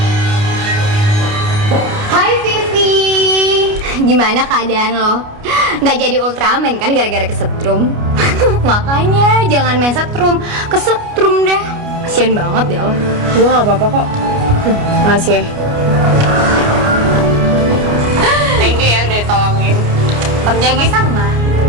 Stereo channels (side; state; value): left; late; 29 ms